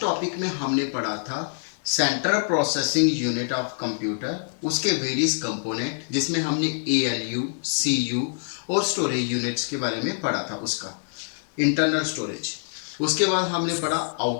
टॉपिक में हमने पढ़ा था central processing unit of computer, उसके वेरियस कंपोनेंट जिसमें हमने एएलयू, सीयू और स्टोरेज यूनिट्स के बारे में पढ़ा था, उसका इंटरनल स्टोरेज। उसके बाद हमने पढ़ा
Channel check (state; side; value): silent; right; digital silence